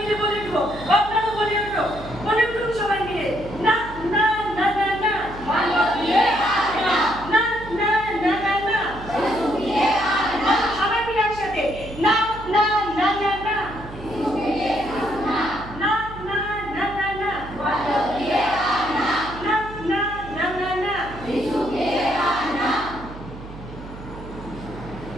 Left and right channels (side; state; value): right; noise; hum, 14 dB below the sound